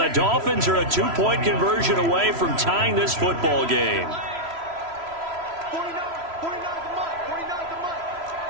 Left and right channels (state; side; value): late; left; 3.0 ms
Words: Dolphins are a 2-point conversion away from tying this football game. 49 the month. 49 the month.